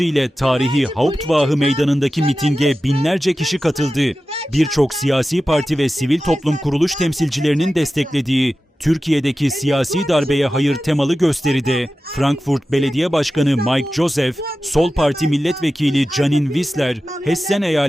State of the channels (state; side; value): normal; both; correlation 0.94